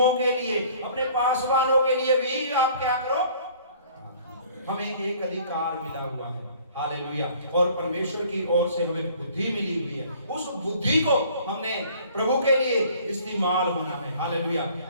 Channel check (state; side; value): inverted; both; correlation -0.54